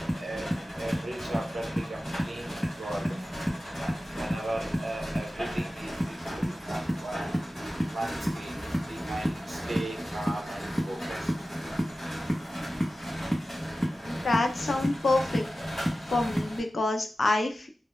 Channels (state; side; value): normal; both; correlation 0.95